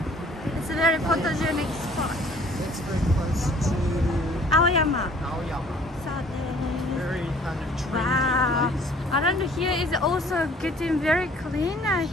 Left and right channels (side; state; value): both; normal; correlation 0.54